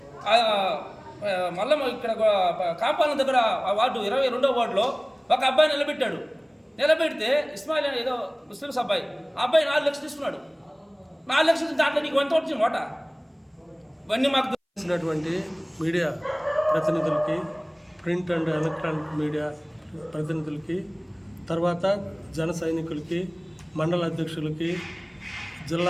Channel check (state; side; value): identical; both; correlation 1.00